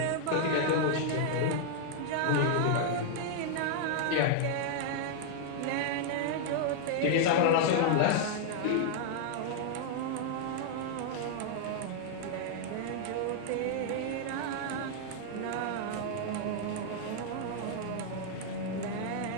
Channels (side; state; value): both; different; correlation -0.01